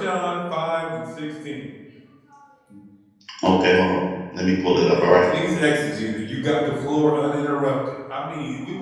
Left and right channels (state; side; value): identical; both; correlation 1.00